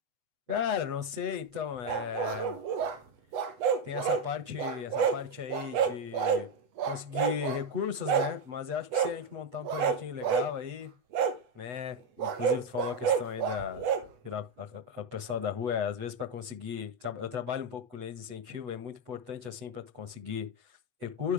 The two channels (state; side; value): late; left; 8.1 ms